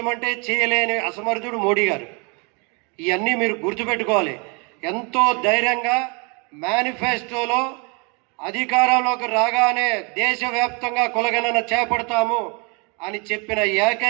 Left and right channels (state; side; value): quieter; left; 32.7 dB